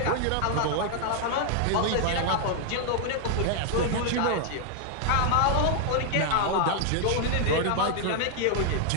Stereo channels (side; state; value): both; different; correlation 0.00